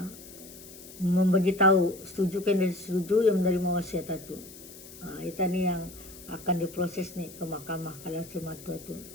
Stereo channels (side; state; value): left; noise; hiss, 17 dB below the sound